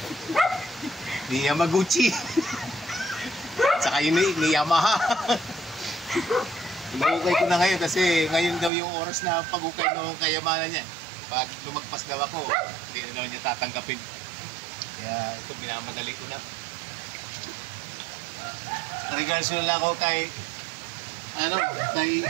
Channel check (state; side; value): drops out; left; at 8.7 s